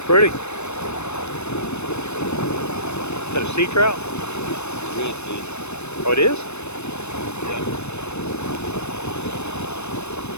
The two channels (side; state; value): right; late; 0.81 ms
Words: pretty. Is that a sea trout? Redfish. Oh, it is?